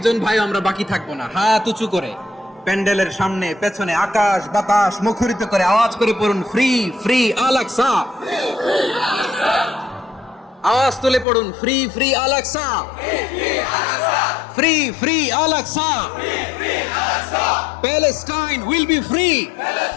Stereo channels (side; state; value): right; drops out; at 11.2 s